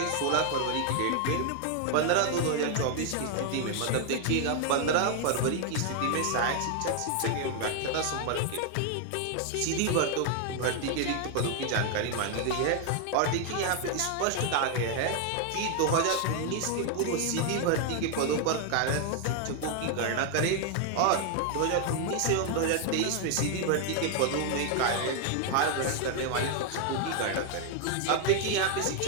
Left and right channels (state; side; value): different; both; correlation 0.00